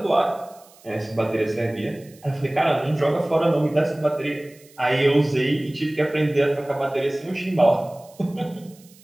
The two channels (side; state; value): right; noise; hiss, 26 dB below the sound